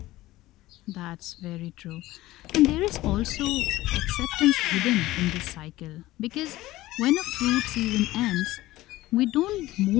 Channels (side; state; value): right; quieter; 17.0 dB